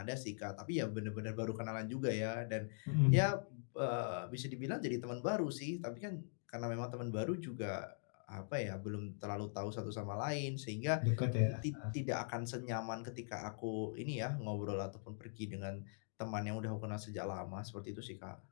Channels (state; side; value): silent; right; digital silence